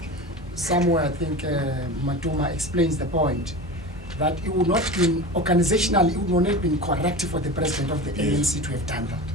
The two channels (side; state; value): both; normal; correlation 0.31